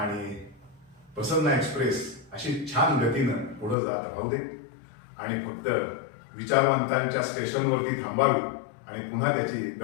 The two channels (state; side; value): drops out; right; at 3.8 s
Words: प्रसन्न एक्सप्रेस अशी छान गतीनं पुढे जात राहू दे आणि फक्त विचारवंतांच्या स्टेशनवरती थांबावी आणि पुन्हा त्याची